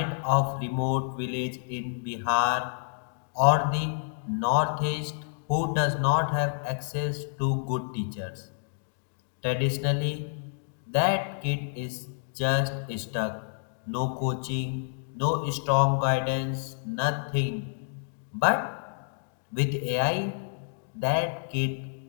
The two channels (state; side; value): silent; right; digital silence